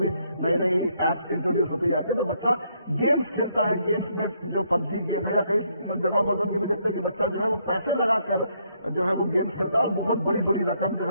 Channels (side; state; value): both; inverted; correlation -0.73